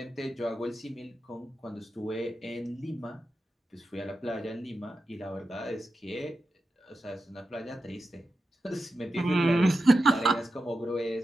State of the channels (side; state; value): both; normal; correlation 0.90